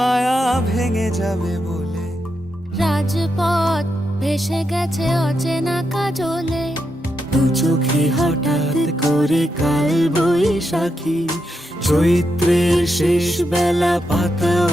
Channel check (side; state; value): both; normal; correlation 0.84